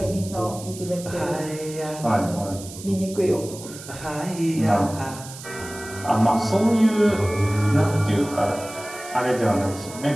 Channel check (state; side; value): noise; right; hiss, 14 dB below the sound